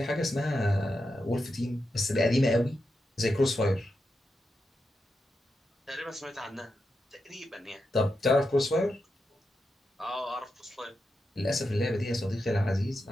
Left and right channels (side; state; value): both; normal; correlation 0.87